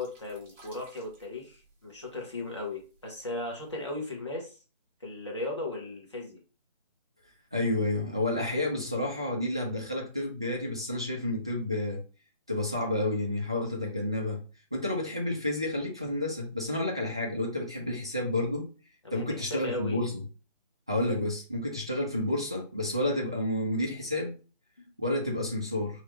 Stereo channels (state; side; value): inverted; both; correlation -0.55